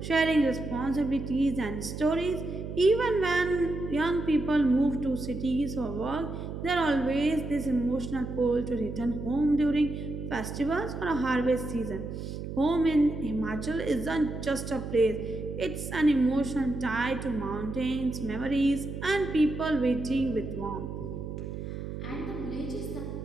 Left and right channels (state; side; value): noise; right; hum, 7 dB below the sound